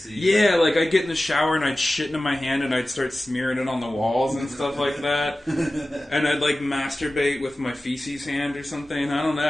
Yeah, like I'd get in the shower and I'd shit into my hand and I'd start smearing it on the walls and stuff like that. And I'd like masturbate with my feces hand or something. I don't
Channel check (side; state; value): both; normal; correlation 0.96